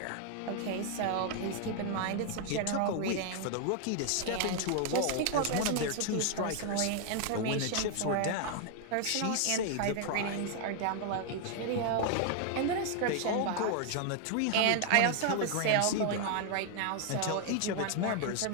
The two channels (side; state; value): both; different; correlation 0.00